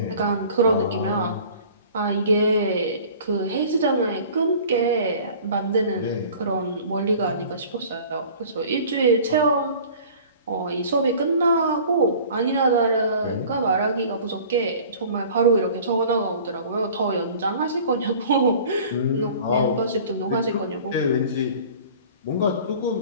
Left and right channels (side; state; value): both; inverted; correlation -0.46